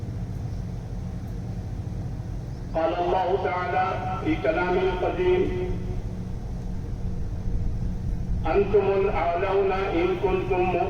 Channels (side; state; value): both; identical; correlation 1.00